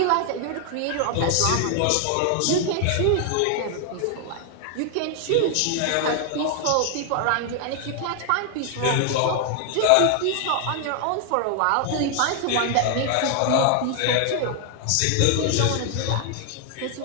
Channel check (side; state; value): both; different; correlation 0.00